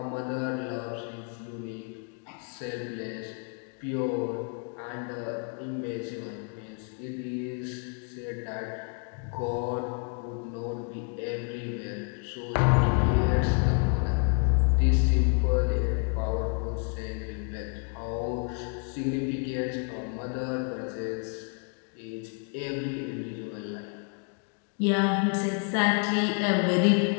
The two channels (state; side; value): quieter; right; 39.6 dB